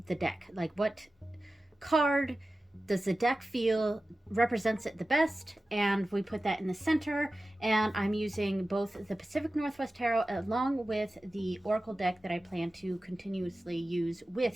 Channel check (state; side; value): normal; both; correlation 0.95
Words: the deck. Like, what card does the deck feel represents it the best, and we put that in the center. And I'm using both the Pacific Northwest Tarot along with the Oracle deck that I plan to continuously use